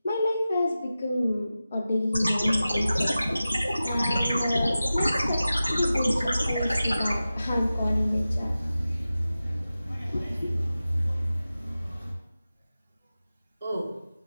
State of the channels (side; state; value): both; inverted; correlation -0.95